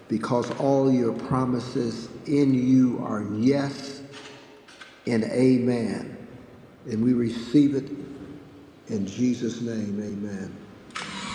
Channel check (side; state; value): both; identical; correlation 1.00